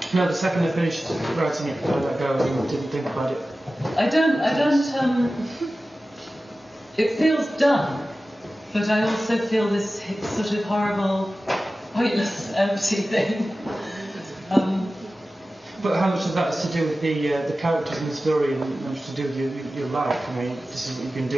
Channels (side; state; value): both; normal; correlation 0.95